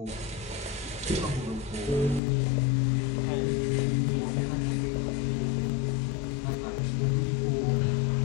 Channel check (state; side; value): drops out; right; at 2.2 s